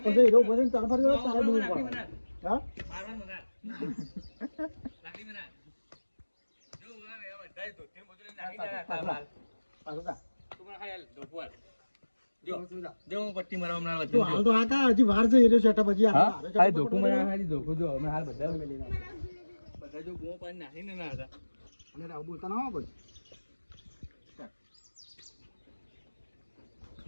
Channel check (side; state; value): both; inverted; correlation -1.00